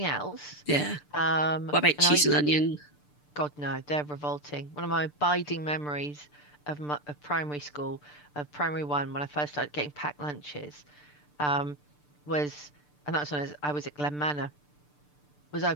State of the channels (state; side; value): late; right; 6.8 ms